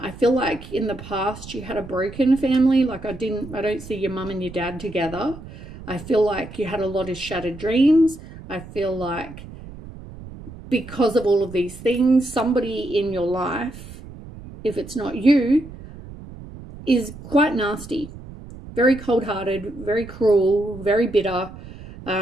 feel like in the past you had a broken family. Like I don't see your mum and your dad together. I feel like you had a lot of shattered dreams. I feel like because of all of these things, somebody in your life, if it's not you, is quite nasty, very cold-hearted, very cruel, very bitter.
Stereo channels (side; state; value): right; noise; rumble, 15 dB below the sound